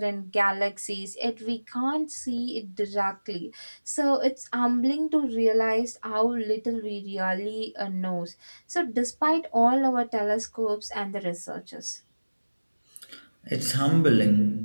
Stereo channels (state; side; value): inverted; both; correlation -1.00